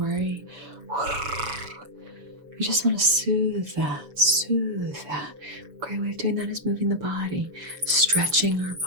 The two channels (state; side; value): late; left; 7.2 ms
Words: You just want to soothe that. A great way of doing that is moving the body, stretching our